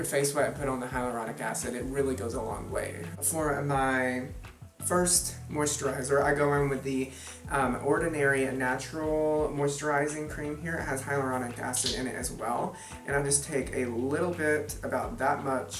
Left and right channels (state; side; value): identical; both; correlation 1.00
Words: face wet and put on the hyaluronic acid, it really goes a long way. For my first moisturizer, I go in with the Ordinary Natural Moisturizing Cream here. It has hyaluronic acid in it as well. And I just take a little bit, about that